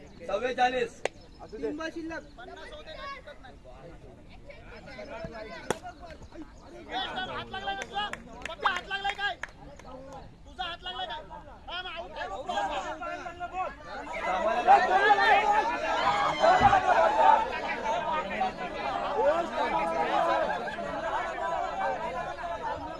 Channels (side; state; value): both; identical; correlation 1.00